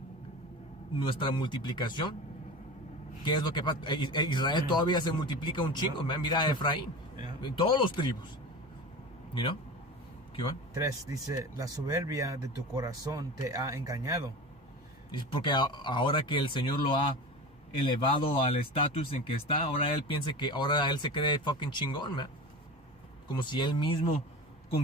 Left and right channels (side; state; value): both; normal; correlation 0.31